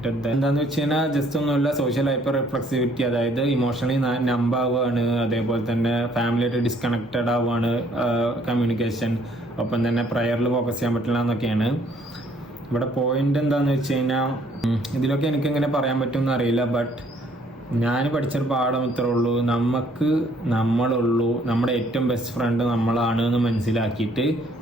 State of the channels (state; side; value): normal; both; correlation 0.63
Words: എന്താന്ന് വെച്ച് കഴിഞ്ഞാൽ ജസ്റ്റ് ഒന്നുമില്ല, സോഷ്യൽ ഹൈപ്പർ റിഫ്ലക്സിവിറ്റി, അതായത് ഇമോഷണലി നമ്പ് ആവുകയാണ്, അതേപോലെ തന്നെ ഫാമിലിയായിട്ട് ഡിസ്കണക്റ്റഡ് ആവുകയാണ്, കമ്മ്യൂണിക്കേഷൻ, ഒപ്പം തന്നെ പ്രയറിൽ ഫോക്കസ് ചെയ്യാൻ പറ്റില്ല എന്നൊക്കെയാണ് ഇവിടെ പോയിന്റ്. എന്താന്ന് വെച്ച് കഴിഞ്ഞാൽ ഇതിലൊക്കെ എനിക്ക് എങ്ങനെ പറയാൻ പറ്റുമെന്ന് അറിയില്ല, ബട്ട് ഞാൻ പഠിച്ചൊരു പാഠം ഇത്രേ ഉള്ളൂ: നമ്മളുള്ളൂ, നമ്മുടെ ഏറ്റവും ബെസ്റ്റ് ഫ്രണ്ട് നമ്മളാണ് എന്ന് മനസ്സിലാക്കിയിട്ട്